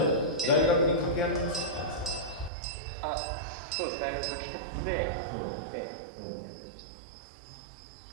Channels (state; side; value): drops out; left; at 2.5 s